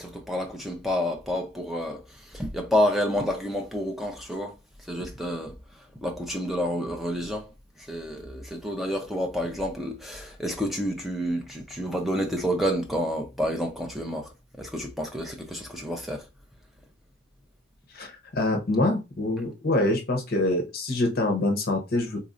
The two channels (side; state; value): both; normal; correlation 0.61